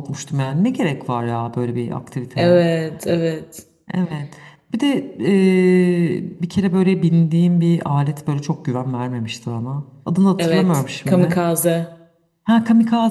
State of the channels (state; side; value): identical; both; correlation 1.00